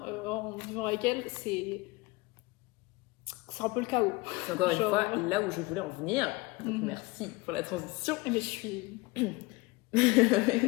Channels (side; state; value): right; quieter; 23.1 dB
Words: en vivant avec elle, c'est un peu le chaos. C'est encore une fois là où je voulais en venir. Donc merci pour la transition. Mais je suis...